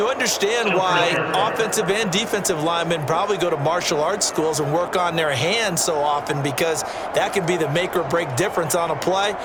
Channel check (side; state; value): both; identical; correlation 1.00